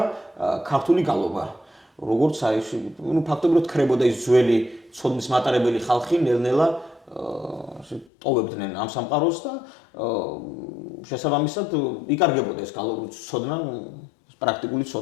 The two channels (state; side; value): drops out; right; at 8.1 s